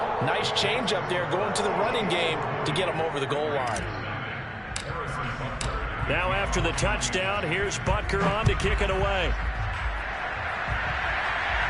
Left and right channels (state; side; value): identical; both; correlation 1.00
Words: Nice change up there going to the running game to get him over the goal line. Now after the touchdown, here's Butker on to kick it away.